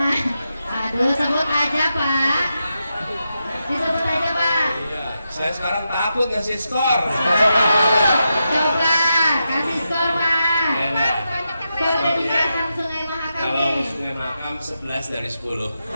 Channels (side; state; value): both; inverted; correlation -0.87